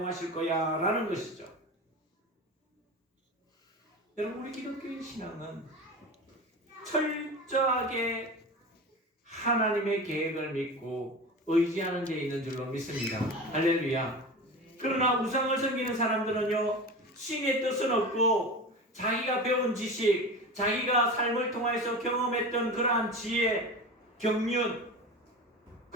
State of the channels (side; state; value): both; normal; correlation 0.30